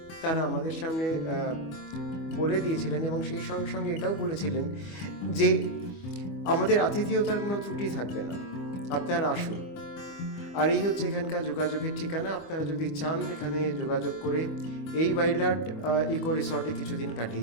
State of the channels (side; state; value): right; late; 25 ms